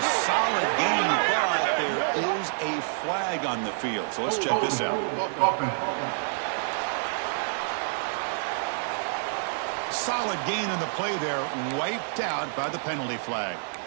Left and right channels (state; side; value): silent; left; digital silence